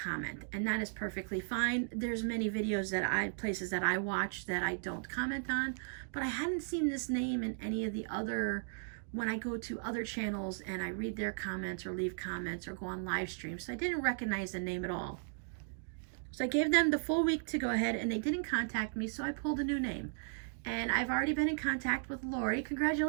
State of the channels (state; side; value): silent; left; digital silence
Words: and that is perfectly fine. There's many videos places that I watch that I don't comment on, but I hadn't seen this name in any of the other when I go to other channels and I read their comments or leave comments or go on live streams. So I didn't recognize the name at all. So I gave them the full week to go ahead, and they didn't contact me, so I pulled a new name. And I've already been in contact with Lori.